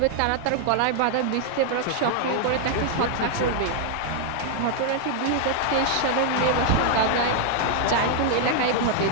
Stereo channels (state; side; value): different; both; correlation 0.00